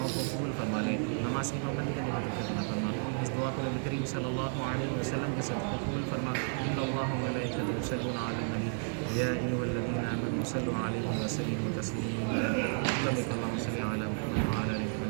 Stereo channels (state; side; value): silent; left; 56 dB below the other